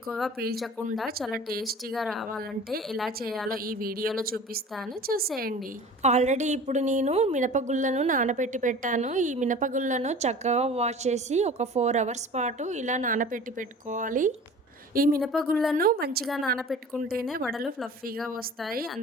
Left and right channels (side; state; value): both; normal; correlation 0.41